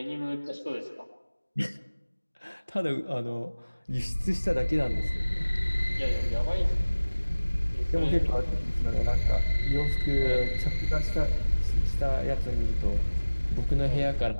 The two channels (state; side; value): inverted; both; correlation -1.00